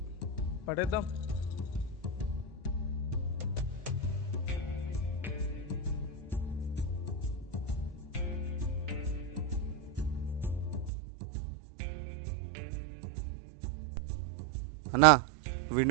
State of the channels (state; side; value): drops out; left; at 10.9 s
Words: పడేద్దాం. అన్నా, వీడు